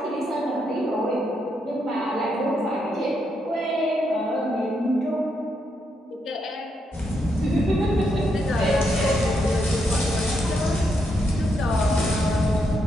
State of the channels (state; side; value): normal; both; correlation 0.80